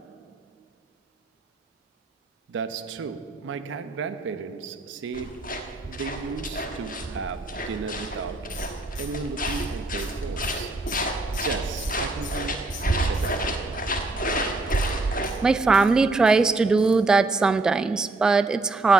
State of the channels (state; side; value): quieter; left; 3.3 dB